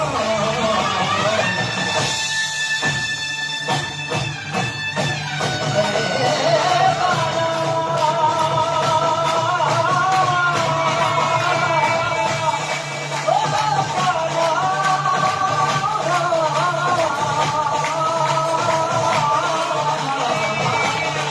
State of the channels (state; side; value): identical; both; correlation 1.00